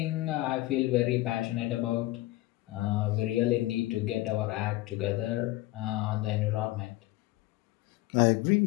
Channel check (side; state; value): right; quieter; 18.3 dB